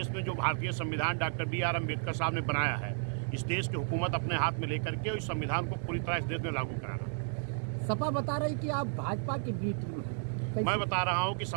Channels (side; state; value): left; silent; 56 dB below the other